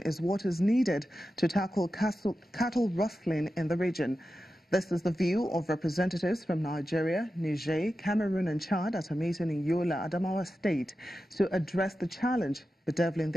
what is needed to tackle cattle rustling in the region. This is the view of representatives from Nigeria, Niger, Cameroon and Chad at a meeting in Yola, Adamawa State to address the challenge bedeviling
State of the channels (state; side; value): normal; both; correlation 0.92